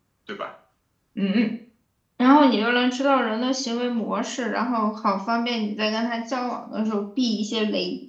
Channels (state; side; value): identical; both; correlation 1.00